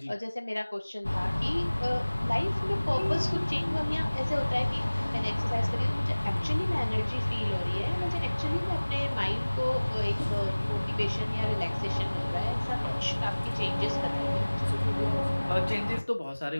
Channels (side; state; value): both; inverted; correlation -1.00